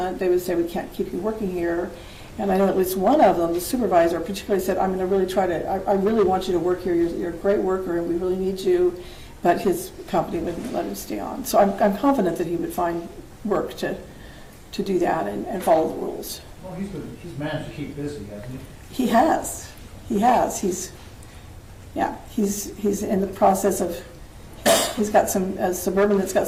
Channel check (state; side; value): identical; both; correlation 1.00